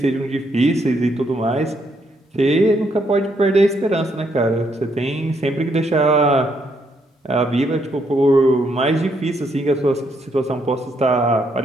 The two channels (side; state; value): both; normal; correlation 0.74